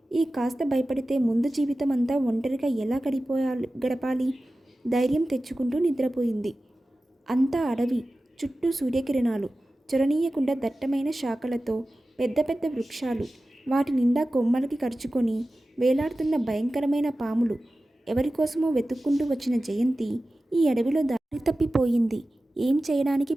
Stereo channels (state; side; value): normal; both; correlation 0.95